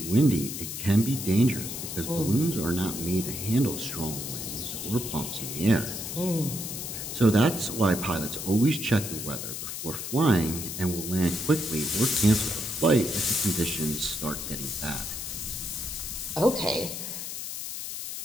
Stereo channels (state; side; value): noise; left; hiss, 6 dB below the sound